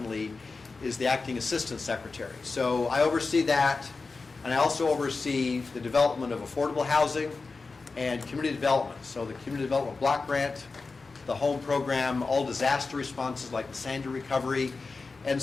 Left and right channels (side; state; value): right; quieter; 4.1 dB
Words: is the Acting Assistant Secretary. So I oversee that, and I also oversee the development of affordable housing and community development. So the Community Development Block Grant, the home program, all disaster responses like the Sandy recovery. And